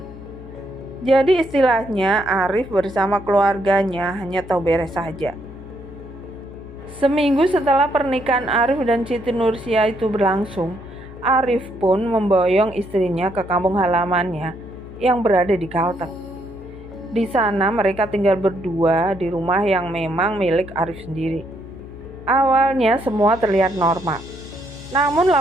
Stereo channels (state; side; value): noise; left; hum, 16 dB below the sound